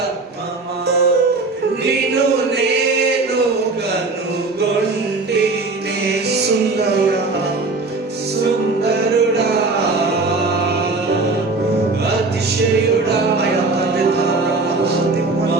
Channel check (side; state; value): left; quieter; 3.5 dB